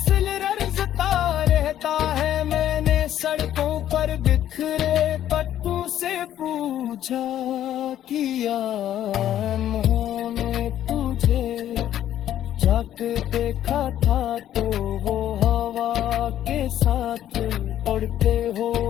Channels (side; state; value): right; quieter; 11.5 dB